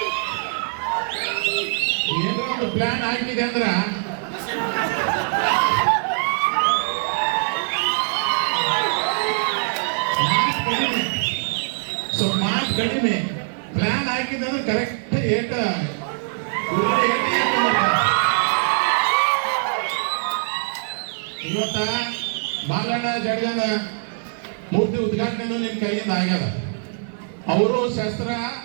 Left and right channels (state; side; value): silent; left; 58 dB below the other